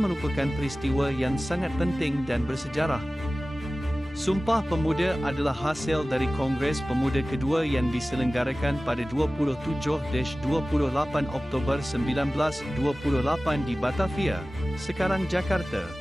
merupakan peristiwa yang sangat penting dan bersejarah. Sumpah Pemuda adalah hasil dari Kongres Pemuda kedua yang diselenggarakan pada 27-28 Oktober 1928 di Batavia, sekarang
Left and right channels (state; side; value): normal; both; correlation 0.97